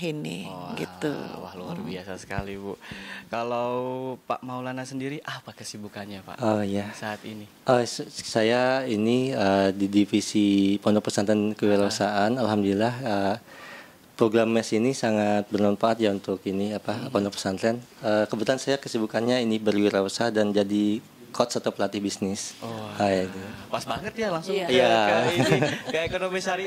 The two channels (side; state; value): both; identical; correlation 1.00